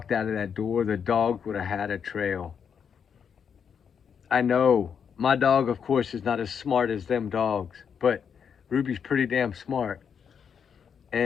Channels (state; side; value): quieter; right; 7.2 dB